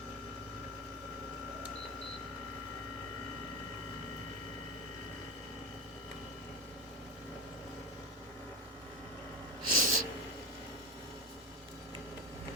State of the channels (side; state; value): left; noise; hum, 29 dB below the sound